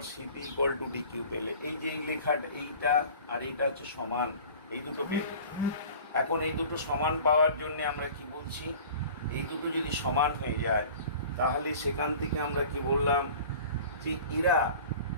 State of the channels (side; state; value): both; inverted; correlation -0.43